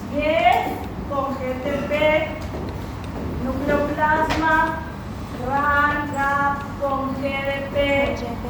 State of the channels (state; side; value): identical; both; correlation 1.00